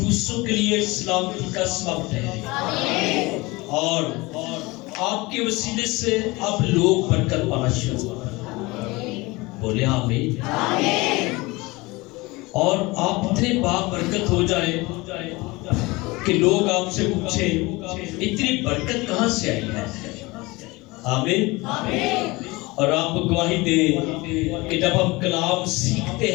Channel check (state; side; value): quieter; right; 22.9 dB